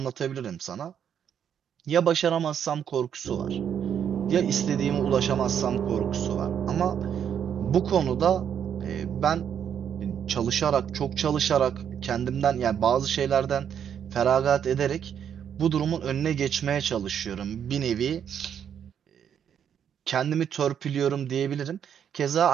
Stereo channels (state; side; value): quieter; left; 8.6 dB